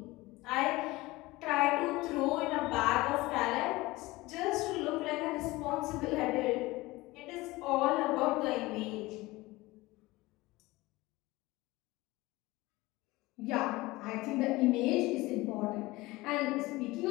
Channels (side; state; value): right; quieter; 20.5 dB